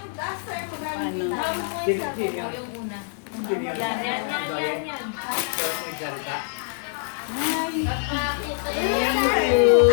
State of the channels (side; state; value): right; silent; digital silence